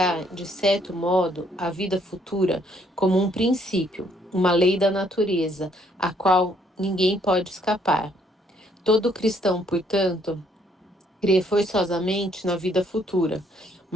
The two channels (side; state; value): both; normal; correlation 0.68